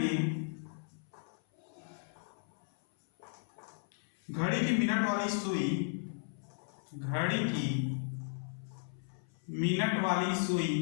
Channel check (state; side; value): silent; right; 54 dB below the other